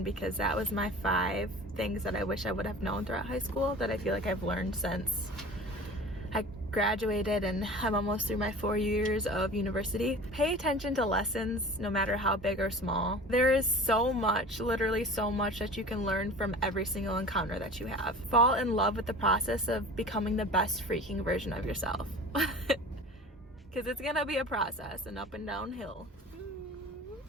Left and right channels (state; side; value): normal; both; correlation 0.40